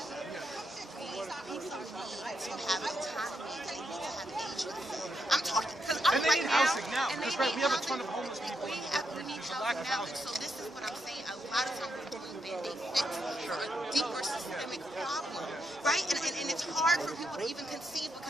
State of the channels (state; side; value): normal; both; correlation 0.81